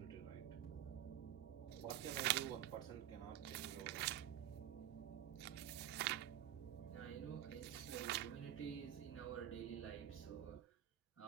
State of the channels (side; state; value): left; quieter; 11.7 dB